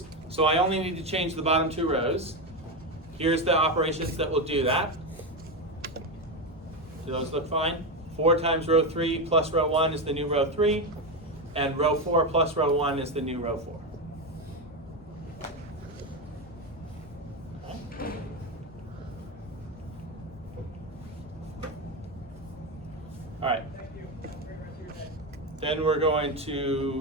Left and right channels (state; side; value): normal; both; correlation 0.12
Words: So I only need to change the bottom 2 rows. Here's the operations that will do that. Do those look fine? 4 times row 3 plus row 1 is the new row 3, and row 4 plus row 1 is the new row 4. Okay. All right. Then we're going